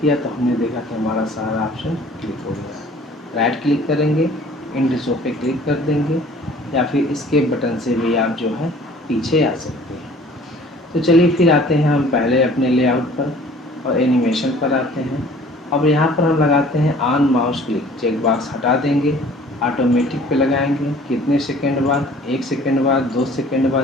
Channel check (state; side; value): normal; both; correlation 0.51